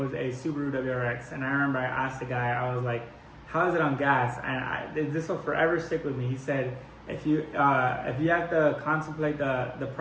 a Subaru WRX, and I remember I asked the guy, I was like, how is it on gas? And this will forever stick with me. He said, if you have to contemplate the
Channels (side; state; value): both; identical; correlation 1.00